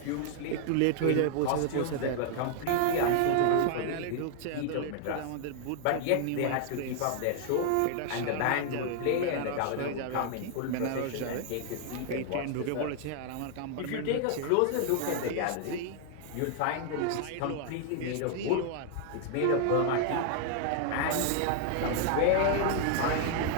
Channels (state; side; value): different; both; correlation 0.00